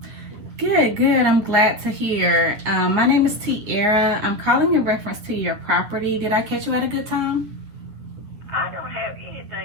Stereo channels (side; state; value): left; late; 9.9 ms